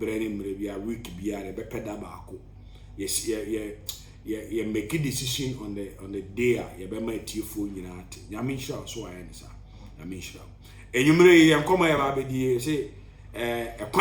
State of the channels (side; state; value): both; identical; correlation 1.00